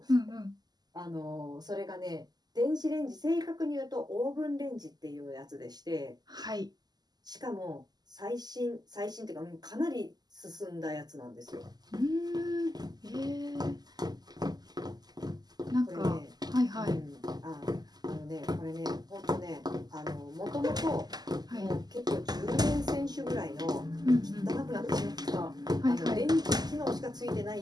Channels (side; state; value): left; late; 0.20 ms